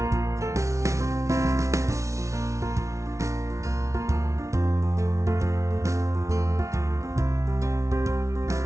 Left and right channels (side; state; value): left; late; 0.14 ms